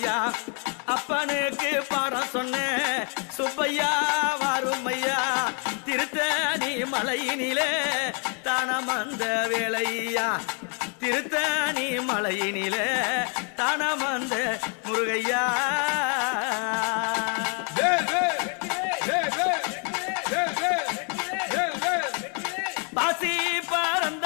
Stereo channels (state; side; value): quieter; right; 39.2 dB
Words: அப்பனுக்கு பாடம் சொன்ன சுப்பையா வாருமையா திருத்தணி மலையினிலே தானமந்த வேளையா திருத்தணி மலையினிலே தானமந்த முருகையா பாசி பறந்த